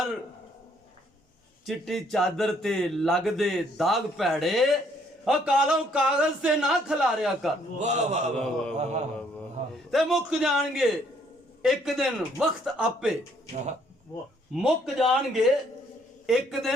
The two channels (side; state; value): both; normal; correlation 0.66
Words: ਚਿੱਟੀ ਚਾਦਰ ਤੇ ਲੱਗਦੇ ਦਾਗ ਭੈੜੇ, ਕਾਲੋਂ ਕਾਗਜ਼ ਤੇ ਨਾ ਖਿਲਾਰਿਆ ਕਰ। ਵਾਹ ਵਾਹ ਵਾਹ, ਤੇ ਮੁੱਕ ਜਾਣਗੇ ਇੱਕ ਦਿਨ ਵਕਤ ਆਪੇ, ਮੁੱਕ ਜਾਣਗੇ ਇੱਕ